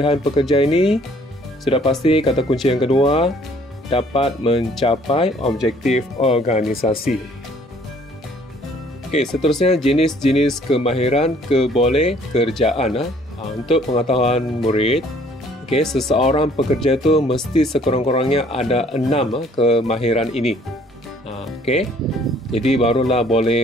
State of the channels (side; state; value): both; normal; correlation 0.59